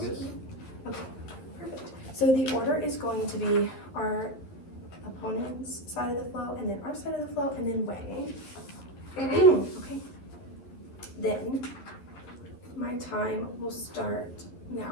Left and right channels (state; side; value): late; right; 11 ms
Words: this. Okay, perfect. So the order is going to be our opponent's side of the flow, and then our side of the flow, and then weighing. Okay. Then my time will start